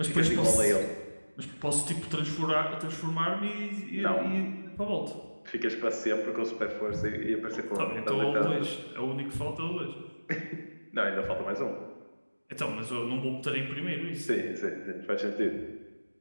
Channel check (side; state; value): both; inverted; correlation -1.00